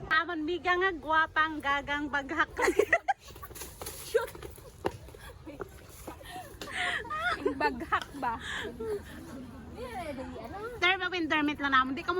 Amon biga nga gwapang gagang baghak. Baghak ba? Term of endearment lang namon. Di ka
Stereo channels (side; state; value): both; identical; correlation 1.00